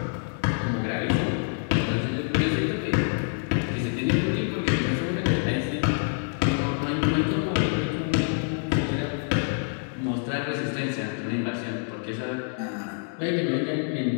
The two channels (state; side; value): silent; right; 59 dB below the other